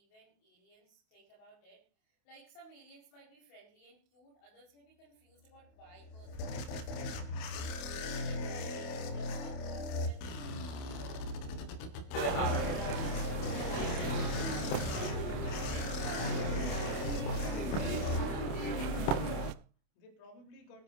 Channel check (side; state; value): right; late; 28 ms